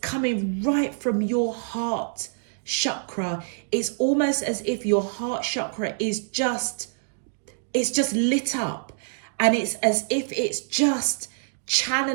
right from your heart chakra. It's almost as if your heart chakra is just lit up, and it's as if it's just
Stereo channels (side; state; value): left; silent; digital silence